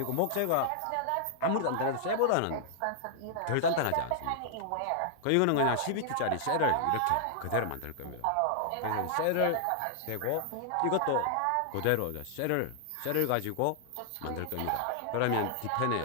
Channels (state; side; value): different; both; correlation -0.01